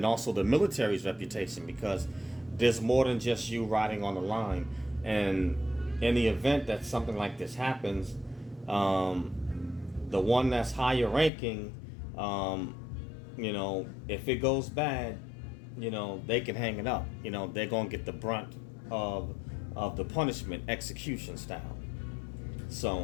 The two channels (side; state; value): right; drops out; at 11.3 s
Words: also the military's reputation, because there's more than just you riding on the line. And in the event that something like this happens, the one that's higher ranking, if it goes bad, they can hang it up. They're going to get the brunt of the punishment, execution style.